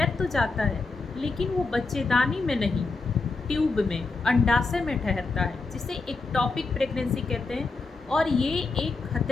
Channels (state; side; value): quieter; right; 3.9 dB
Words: तो जाता है लेकिन वो बच्चेदानी में नहीं, ट्यूब में, अंडाशय में ठहरता है, जिसे एक्टोपिक प्रेगनेंसी कहते हैं। और ये एक